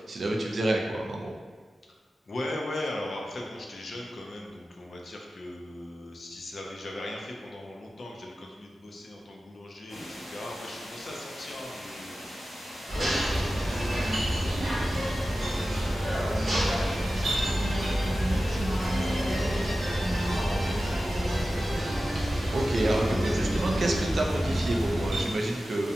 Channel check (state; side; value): normal; both; correlation 0.94